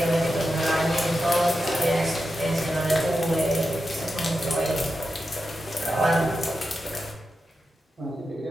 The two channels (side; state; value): both; normal; correlation 0.89